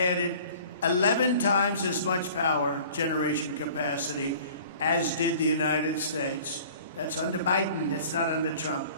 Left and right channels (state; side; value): inverted; both; correlation -0.47